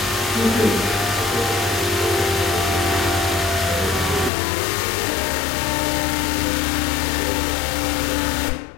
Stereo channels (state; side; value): drops out; right; at 4.3 s